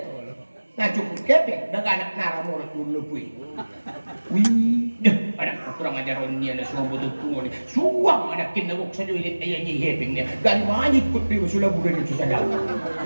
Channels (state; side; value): inverted; both; correlation -1.00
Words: nah cukup kepeng, dah anak nara mulut dulu pui, wih, dah anak kurang ajar orangnya, ada semua butuh tunggu ni, suang anak kinabuk saja ilit ayahnya hepeng dia, dan mana ikut dia sudah bulan itu sedang,